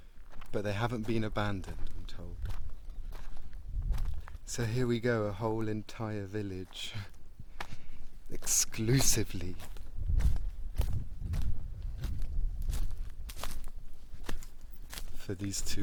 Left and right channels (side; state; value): both; identical; correlation 1.00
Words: But they haven't been abandoned, I'm told. So here we go, a whole entire village, exclusively for these